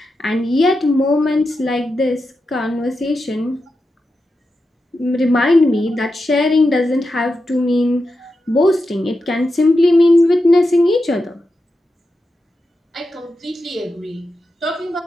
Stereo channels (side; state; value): both; normal; correlation 0.89